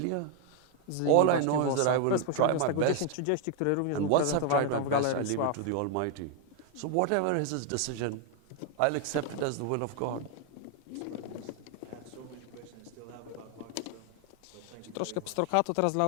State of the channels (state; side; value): different; both; correlation 0.00